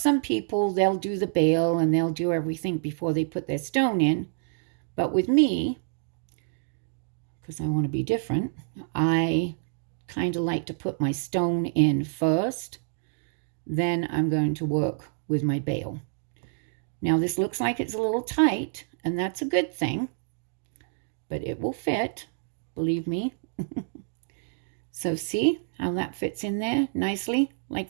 people, they'll do the bale and they'll do everything before they put their stone in. But with me, because I want to be different, I kind of like to put my stone in first. Then I'm going to work with my bale. Now, this looks like it's a little tight, and that's a good thing. But it will fit, believe me. So see how that fits in there nicely, like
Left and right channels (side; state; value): left; silent; digital silence